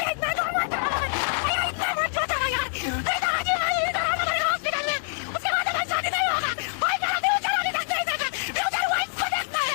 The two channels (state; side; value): silent; right; digital silence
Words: इतना दूर मत जाओ, इतना मत जाओ यार, उसके बाद मैं शादी नहीं होगा, भाई चला दे चला दे फ्यूचर वाइफ को देखता है,